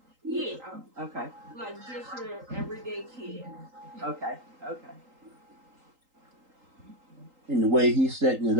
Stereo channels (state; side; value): late; left; 3.8 ms